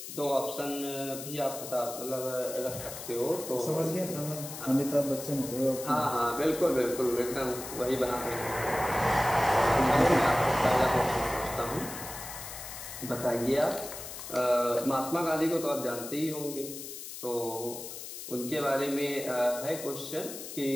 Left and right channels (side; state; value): left; noise; hiss, 10 dB below the sound